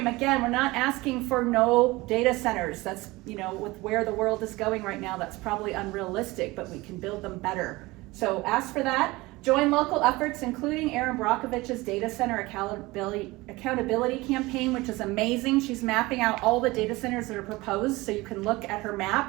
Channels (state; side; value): quieter; left; 21.2 dB